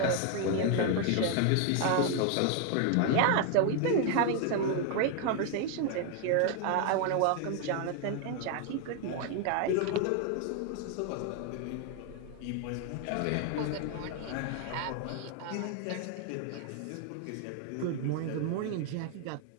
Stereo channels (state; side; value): different; both; correlation 0.00